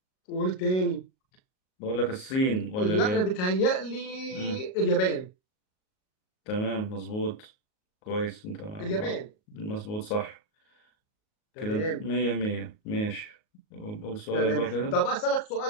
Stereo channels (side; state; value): right; late; 38 ms